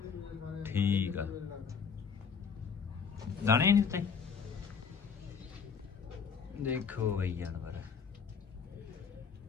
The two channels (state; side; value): quieter; right; 6.1 dB